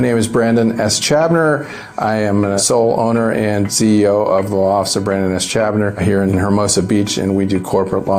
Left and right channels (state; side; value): identical; both; correlation 1.00